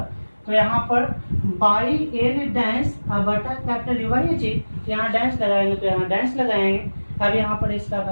तो यहाँ पर बाई एन डैश बटा कैपिटल डी, वही चीज यहाँ डैश लगाएंगे तो यहाँ डैश लगाएंगे। अब यहाँ पर इसका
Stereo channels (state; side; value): inverted; both; correlation -1.00